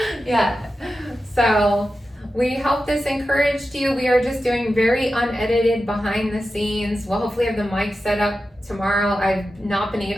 Yeah. So we hope this encouraged you. We are just doing very unedited behind the scenes. We'll hopefully have the mic set up tomorrow.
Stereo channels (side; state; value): both; normal; correlation 0.92